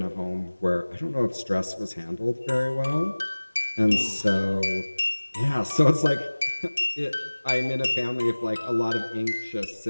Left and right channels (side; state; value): both; inverted; correlation -1.00